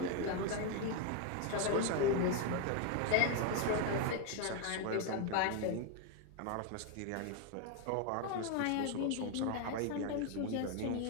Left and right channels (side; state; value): both; different; correlation 0.01